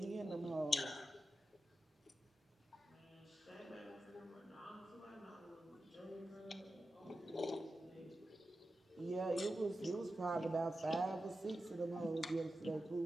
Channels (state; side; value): normal; both; correlation 0.91